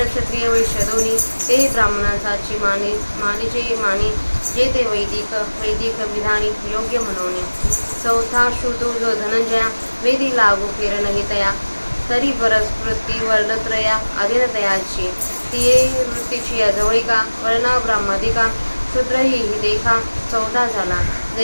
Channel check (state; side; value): inverted; both; correlation -1.00